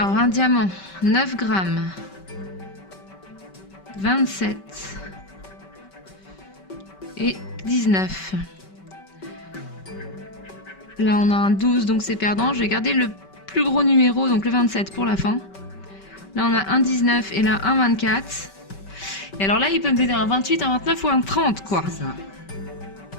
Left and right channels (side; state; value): right; late; 5.2 ms